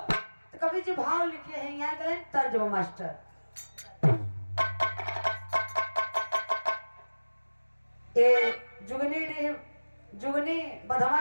तो कवि जी भाव लिखे हैं, यहाँ करें तर्जमा मास्टर। जुगनी बधवा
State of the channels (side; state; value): both; inverted; correlation -1.00